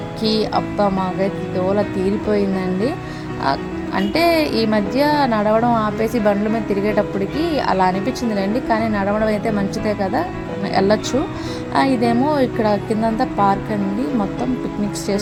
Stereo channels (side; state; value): both; identical; correlation 1.00